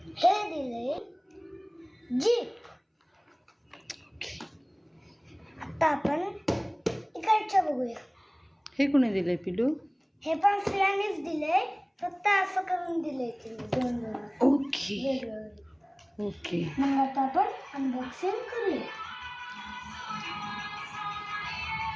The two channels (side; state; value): both; identical; correlation 1.00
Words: हे दिले जीप. आता आपण इकडचं बघूया. हे कोणी दिलंय पिलू? हे पण सियानेच दिले, फक्त असं करून दिले दोन. Okay okay. मग आता आपण अनबॉक्सिंग करूया.